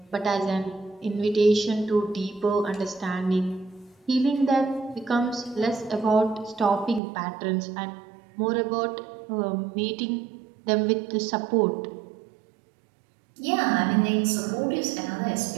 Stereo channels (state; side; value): drops out; left; at 7.0 s